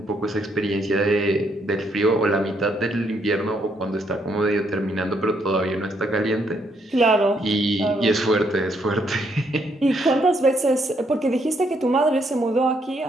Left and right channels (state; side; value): normal; both; correlation 0.73